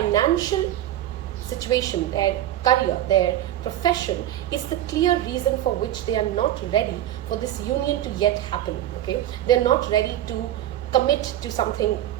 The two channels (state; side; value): quieter; left; 12.8 dB